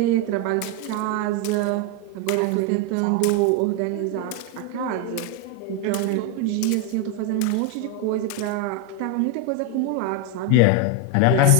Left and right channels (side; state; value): both; different; correlation 0.01